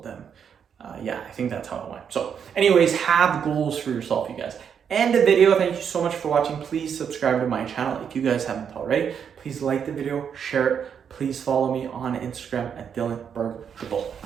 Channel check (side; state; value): left; quieter; 7.6 dB